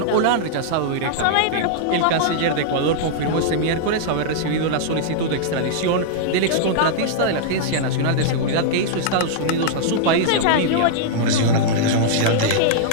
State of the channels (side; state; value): both; different; correlation -0.02